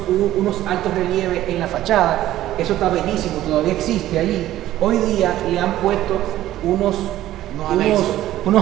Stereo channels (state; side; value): quieter; left; 14.0 dB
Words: altos relieves en la fachada. Eso está bellísimo, todavía existe allí. Hoy día le han puesto unos